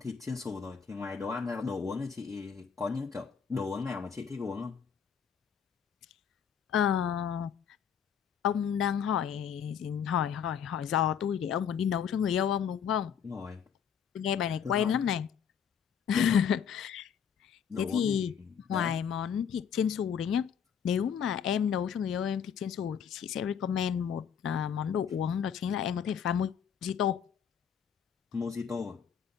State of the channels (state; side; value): quieter; right; 7.7 dB